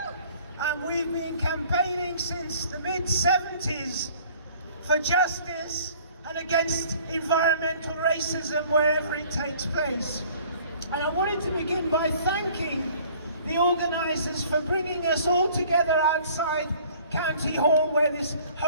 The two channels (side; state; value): both; inverted; correlation -0.53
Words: and we've been campaigning since the mid-70s for justice and against environmental racism wherever it takes place. And I wanted to begin by thanking the organisers for bringing us all together outside County Hall where this